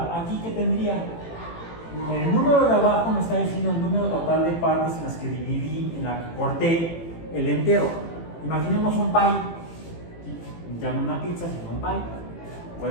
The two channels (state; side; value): late; right; 18 ms